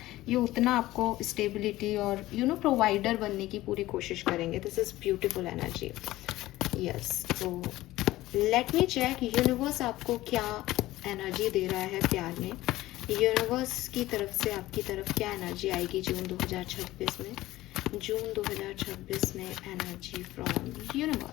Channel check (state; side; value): quieter; right; 16.7 dB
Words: ये उतना आपको स्टेबिलिटी और प्रोवाइडर बनने की पूरी कोशिश करेंगे। This is beautiful energy. Yes, तो लेट मी चेक यूनिवर्स आपको क्या एनर्जी दे रहा है प्यार में। यूनिवर्स की तरफ से आपकी तरफ क्या एनर्जी आएगी जून 2026 में? जून 2026 में एनर्जी फ्रॉम